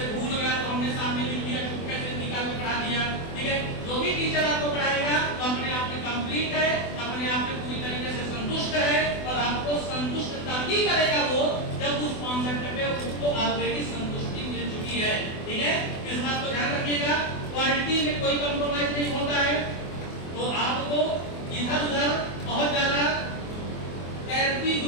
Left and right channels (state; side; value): late; right; 24 ms